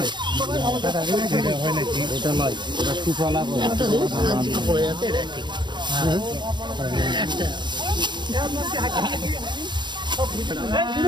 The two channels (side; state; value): left; late; 0.22 ms